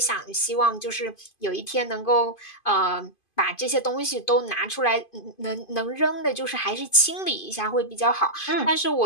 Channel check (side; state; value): right; late; 2.5 ms